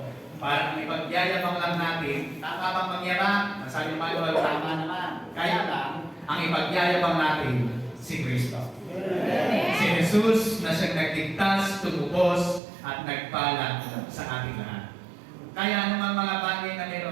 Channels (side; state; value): left; drops out; at 12.6 s